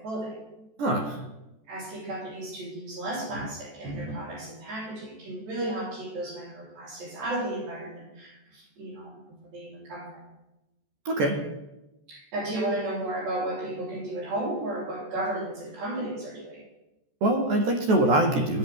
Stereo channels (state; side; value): late; left; 14 ms